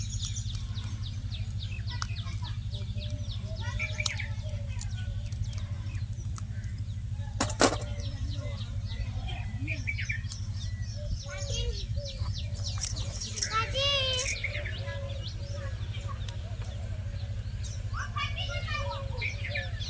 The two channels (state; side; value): identical; both; correlation 1.00